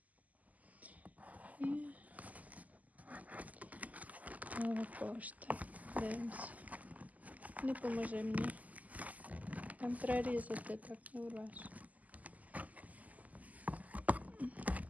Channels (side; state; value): left; late; 0.077 ms